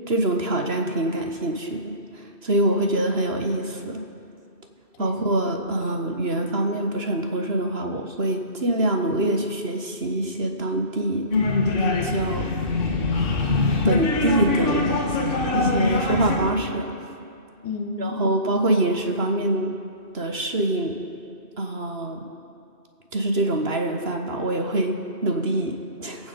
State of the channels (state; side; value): late; left; 2.9 ms